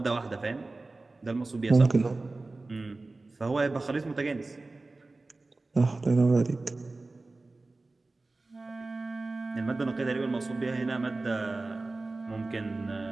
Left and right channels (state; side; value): quieter; left; 3.3 dB